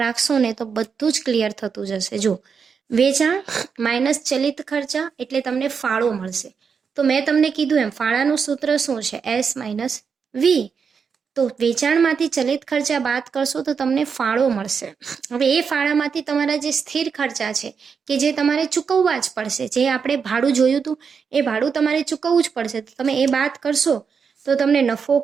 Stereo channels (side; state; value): left; quieter; 6.1 dB